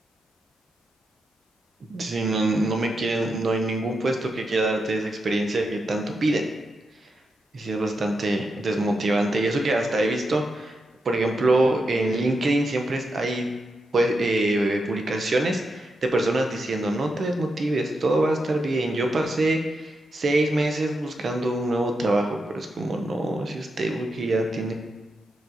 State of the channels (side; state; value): both; normal; correlation 0.86